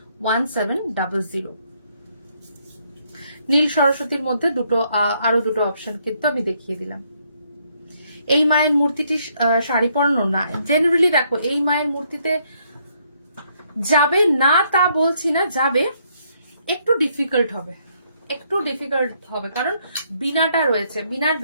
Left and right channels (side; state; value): both; inverted; correlation -0.72